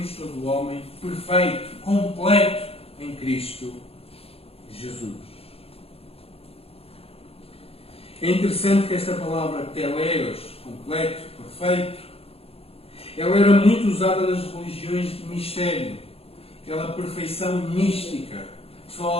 todo o homem perfeito, completo em Cristo Jesus. É interessante que esta palavra teleios, completo, perfeito, ela era muito usada nas religiões de mistério, aquela perfeição mística, que só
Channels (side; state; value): right; late; 0.28 ms